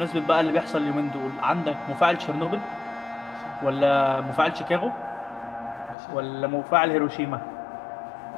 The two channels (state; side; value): drops out; right; at 6.0 s